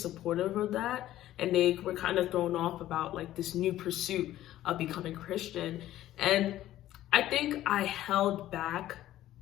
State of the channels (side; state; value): right; quieter; 13.9 dB